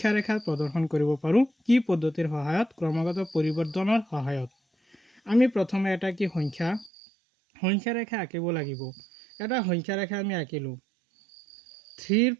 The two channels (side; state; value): left; drops out; at 6.9 s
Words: ৰেখাত প্ৰদৰ্শন কৰিব পাৰোঁ? কি পদ্ধতিৰ সহায়ত? ক্ৰমাগত পৰিৱৰ্তনৰ সহায়ত। আমি প্ৰথমে এটা কি সংখ্যা ৰেখা আঁকিব লাগিব। এটা সংখ্যা ৰেখা আমি আঁকিলোঁ। 3ৰ